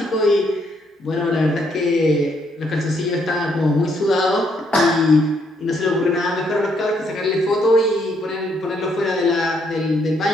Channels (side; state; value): both; normal; correlation 0.72